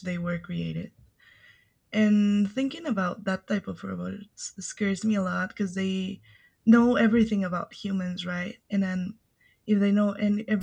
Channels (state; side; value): identical; both; correlation 1.00